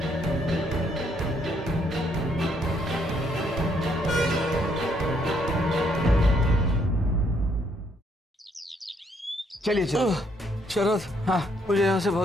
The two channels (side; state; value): both; normal; correlation 0.71